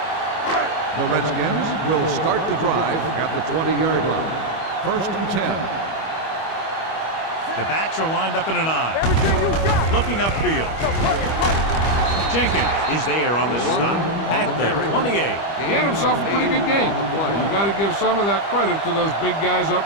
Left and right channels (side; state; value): right; late; 25 ms